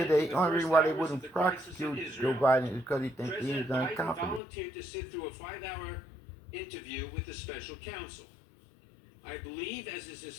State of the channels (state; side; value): drops out; right; at 4.4 s